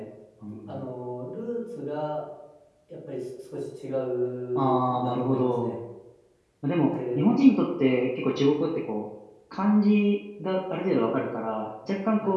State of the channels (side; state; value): both; identical; correlation 1.00